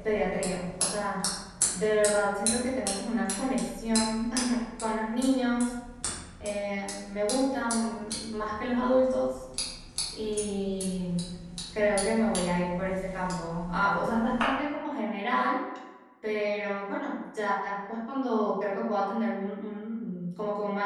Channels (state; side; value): identical; both; correlation 1.00